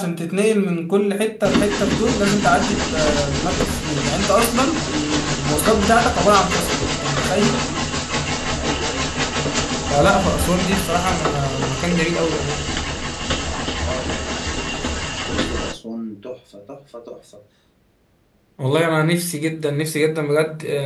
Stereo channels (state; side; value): identical; both; correlation 1.00